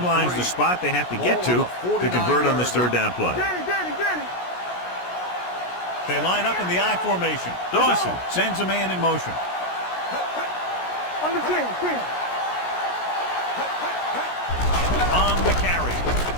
line is the spot they have to get to convert on this third down play. Danny. They line up in the I formation. Dawson sends a man in motion. On the 10. On the carry.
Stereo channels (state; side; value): late; right; 17 ms